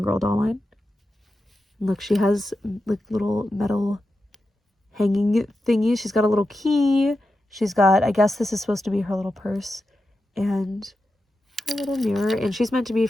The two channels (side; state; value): both; normal; correlation 0.90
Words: Girl doll line. And look, she has like little metal hanging thingies. She's got a little key. She's got, I guess this is supposed to be her little purse. And a little mirror. And she's meant to be